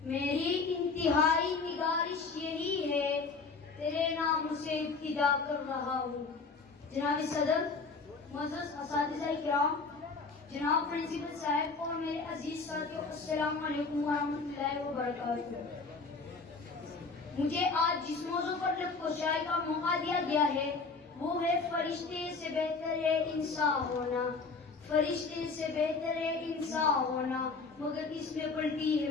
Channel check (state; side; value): quieter; right; 4.4 dB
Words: میری انتہائی نگارش یہی ہے، تیرے نام سے ابتدا کر رہا ہوں۔ جناب صدر، معزز اساتذہ کرام، جناب پرنسپل صاحب اور میرے عزیز ساتھیوں، السلام علیکم ورحمۃ اللہ وبرکاتہ۔ مجھے آج جس موضوع پر لفظ کشائی کا موقع دیا گیا ہے وہ ہے فرشتے سے بہتر ہے انسان ہونا، فرشتے سے بہتر ہے انسان ہونا، مگر اس میں پڑتی ہے